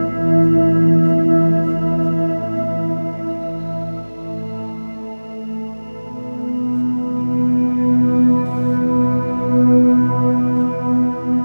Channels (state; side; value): inverted; both; correlation -1.00